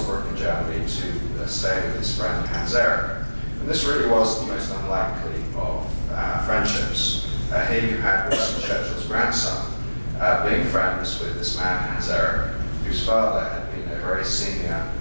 in Germany to stay with his friend Hans Erik. And this really was the most unlikely of friendships. Here you had Winston Churchill's grandson being friends with this man Hans Erik, whose father had been a very senior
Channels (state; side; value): inverted; both; correlation -1.00